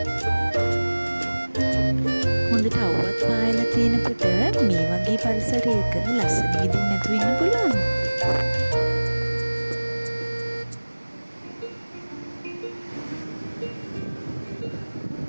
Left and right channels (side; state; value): both; inverted; correlation -1.00